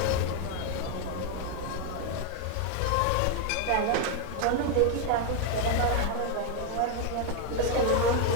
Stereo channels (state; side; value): different; both; correlation 0.01